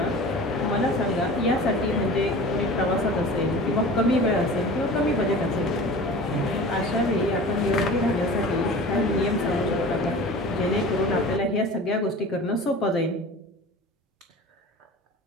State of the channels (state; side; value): normal; both; correlation 0.38